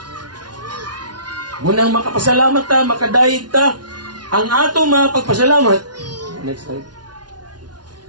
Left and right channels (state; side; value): late; left; 0.69 ms